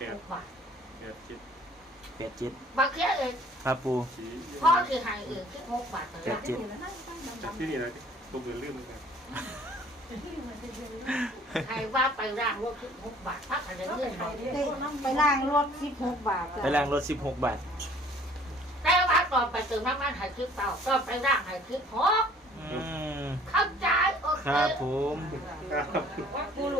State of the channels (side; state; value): both; normal; correlation 0.54